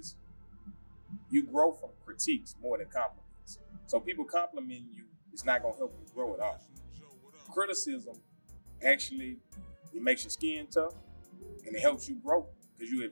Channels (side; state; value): both; inverted; correlation -1.00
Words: you grow from critiques more than compliments. So people complimenting you, it's not gonna help you grow at all. Criticism actually, it makes your skin tough and it helps you grow because you